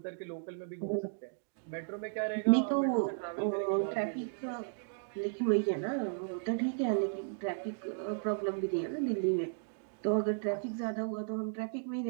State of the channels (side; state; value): left; silent; digital silence